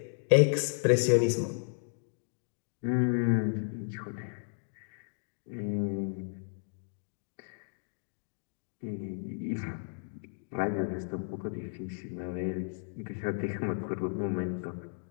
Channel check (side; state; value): right; silent; digital silence